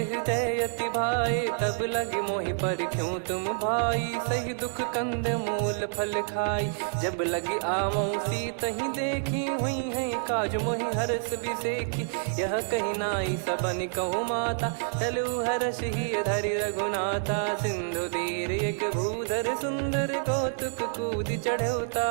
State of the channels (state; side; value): silent; left; digital silence